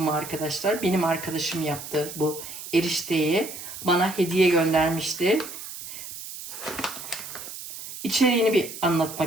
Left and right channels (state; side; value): noise; right; hiss, 11 dB below the sound